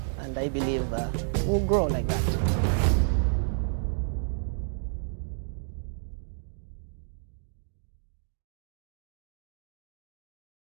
and I believe we'll grow like that.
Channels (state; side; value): silent; left; digital silence